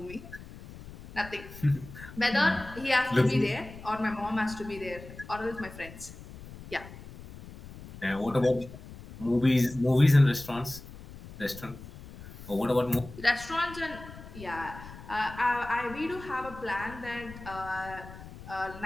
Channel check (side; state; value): left; noise; rumble, 15 dB below the sound